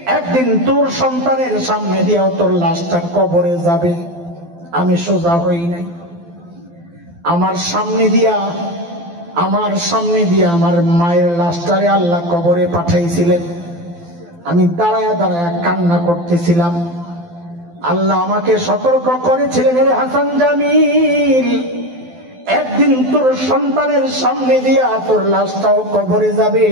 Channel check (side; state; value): left; late; 12 ms